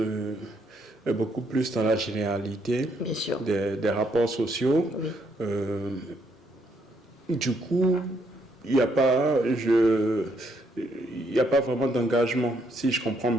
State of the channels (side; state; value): both; normal; correlation 0.72